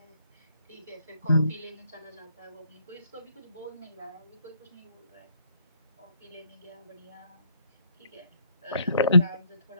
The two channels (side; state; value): both; inverted; correlation -0.69